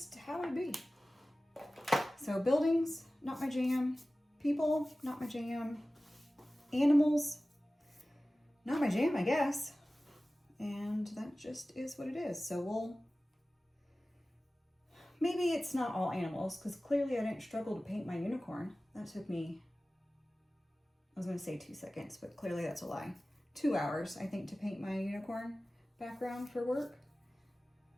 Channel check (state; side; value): normal; both; correlation 0.97